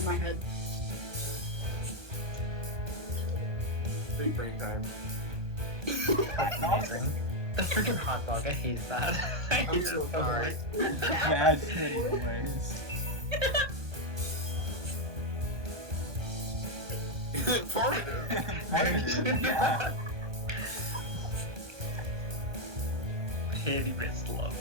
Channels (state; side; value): late; left; 1.2 ms